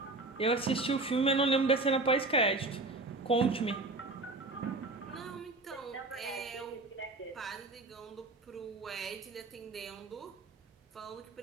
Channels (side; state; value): left; quieter; 3.2 dB